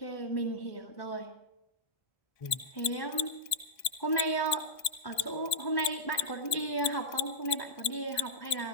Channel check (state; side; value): late; right; 1.7 ms